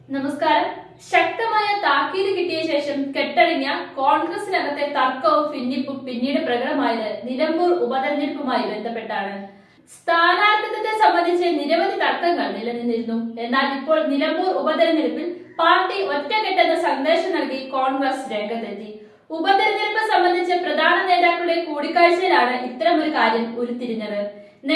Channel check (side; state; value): both; identical; correlation 1.00